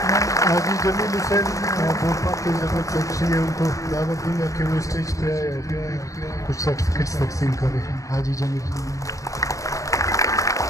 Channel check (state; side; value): late; right; 0.16 ms